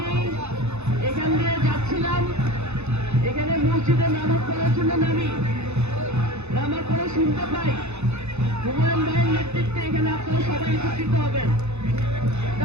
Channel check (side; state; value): left; late; 0.81 ms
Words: এখান দিয়ে যাচ্ছিলাম, এখানে মসজিদে নামাজ পড়ার জন্য নামার পরে শুনতে পাই হুমায়ুন ভাইয়ের নেতৃত্বে এখানে আপনারা সবাই একত্রিত হবেন।